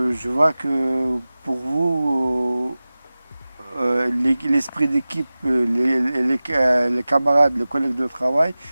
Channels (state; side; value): inverted; both; correlation -0.97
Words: vois que pour vous, l'esprit d'équipe, les camarades, les collègues de travail,